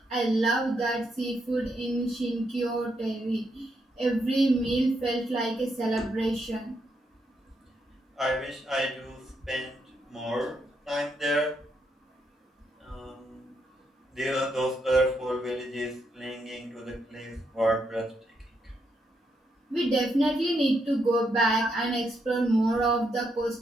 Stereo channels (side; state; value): both; normal; correlation 0.79